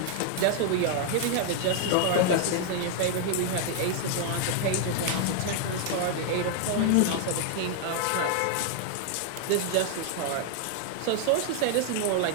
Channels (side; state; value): both; different; correlation 0.00